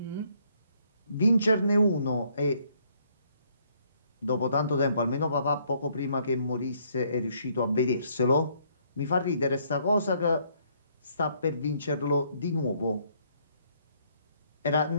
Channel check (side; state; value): both; inverted; correlation -0.67